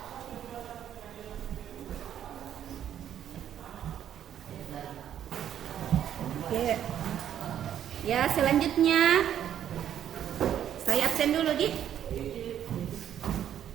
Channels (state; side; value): quieter; left; 10.2 dB